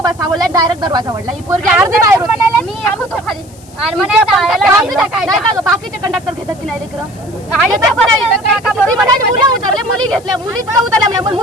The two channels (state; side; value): noise; left; hiss, 25 dB below the sound